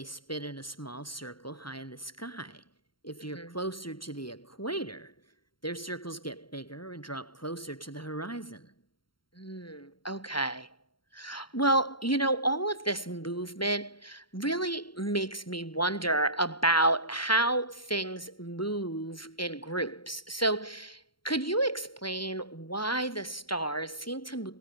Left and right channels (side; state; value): right; late; 0.73 ms